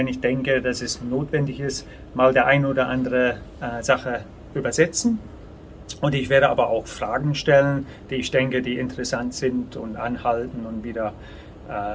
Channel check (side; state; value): both; identical; correlation 1.00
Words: ich denke, dass es notwendig ist, mal der ein oder andere Sache übersetzen. Und ich werde aber auch Fragen stellen, die ich denke, die interessant sind, und anhalten und wieder